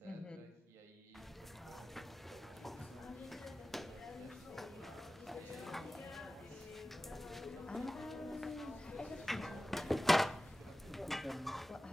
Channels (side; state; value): both; normal; correlation 0.96